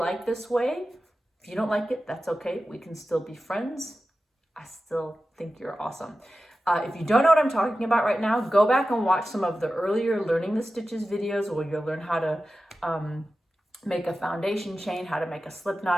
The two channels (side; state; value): both; normal; correlation 0.94